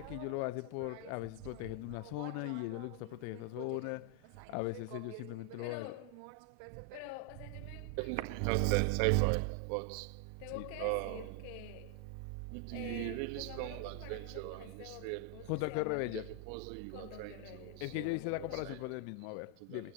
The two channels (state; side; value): different; both; correlation 0.00